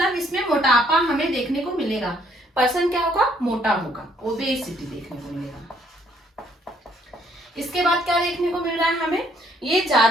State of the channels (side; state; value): both; normal; correlation 0.66